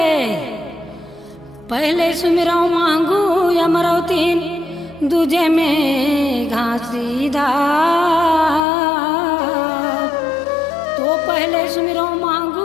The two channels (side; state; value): right; drops out; at 8.7 s